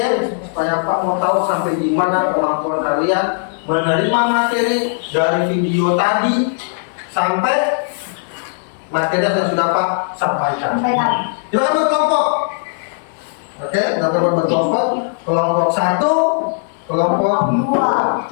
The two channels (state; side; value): silent; right; 60 dB below the other